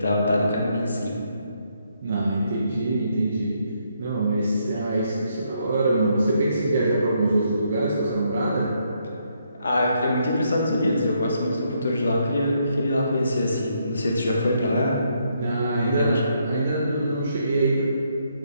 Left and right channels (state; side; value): inverted; both; correlation -0.75